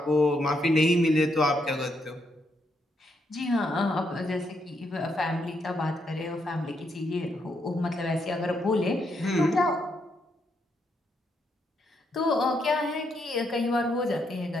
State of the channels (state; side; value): normal; both; correlation 0.78